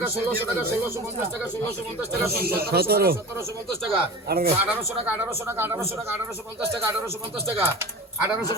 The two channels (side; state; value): both; normal; correlation 0.33